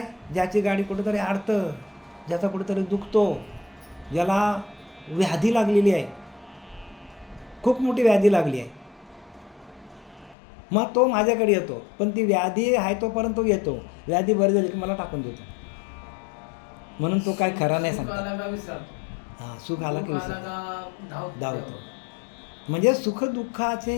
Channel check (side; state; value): right; drops out; at 10.4 s